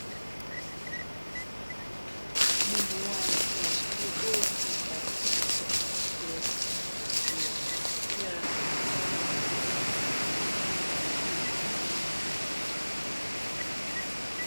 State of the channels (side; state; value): both; inverted; correlation -1.00